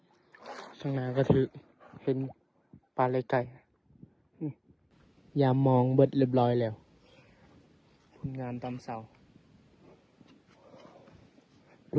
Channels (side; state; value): both; identical; correlation 1.00